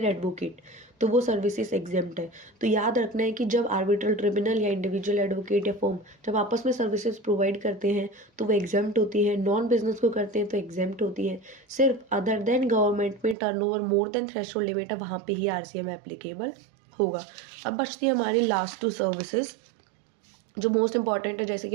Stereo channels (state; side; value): drops out; left; at 13.4 s